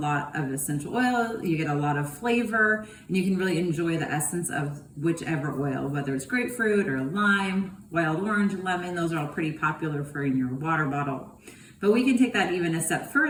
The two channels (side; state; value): both; identical; correlation 1.00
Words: of essential oil. You get a lot of flavor, and you can really enjoy the essence of whichever oil, whether it's grapefruit or lime, wild orange, lemon. Those are all pretty popular for in your water bottle. But we can take that even a step